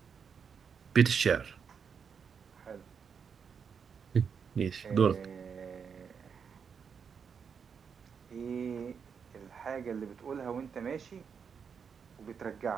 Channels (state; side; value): quieter; left; 6.5 dB